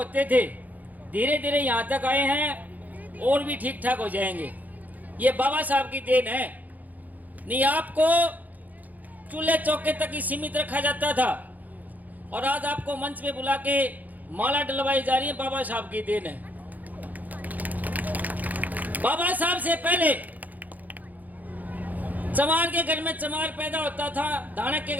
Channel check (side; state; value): left; late; 0.081 ms